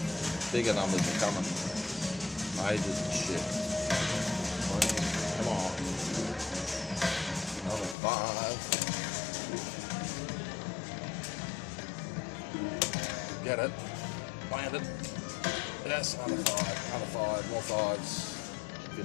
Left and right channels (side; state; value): right; drops out; at 8.0 s